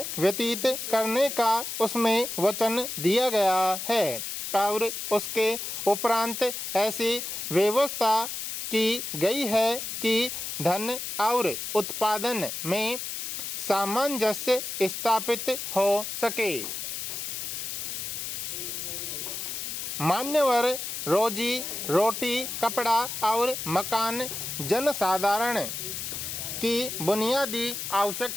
व्यतीत करने का उसमें वचन दिया गया है और उसके उपरांत ऐसी व्यवस्था की गई है कि धन और उत्पादन में सामंजस्य स्थापित हो सके। मान्यवर, रोजी रोटी, कपड़ा और मकान जनसाधारण की बुनियादी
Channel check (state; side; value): noise; left; hiss, 5 dB below the sound